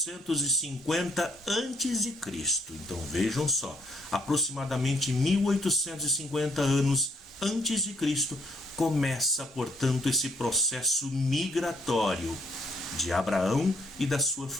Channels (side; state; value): both; normal; correlation 0.69